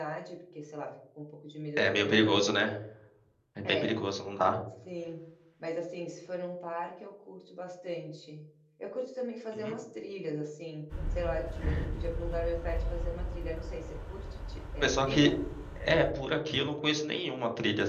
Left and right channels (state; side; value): identical; both; correlation 1.00